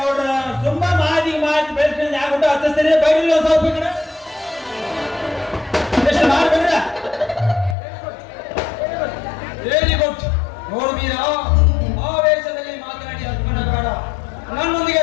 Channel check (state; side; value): drops out; right; at 7.8 s